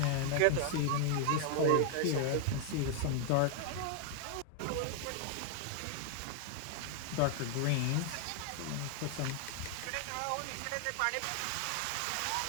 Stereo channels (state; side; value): different; both; correlation 0.00